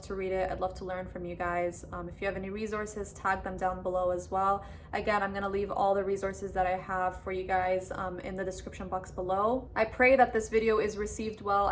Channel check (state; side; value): identical; both; correlation 1.00